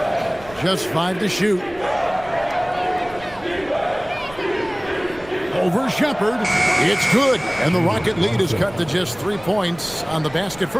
Just 5 to shoot. Over Shepherd. It's good. And the Rocket lead is cut to just 3 points on the basket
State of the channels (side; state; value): right; noise; rumble, 21 dB below the sound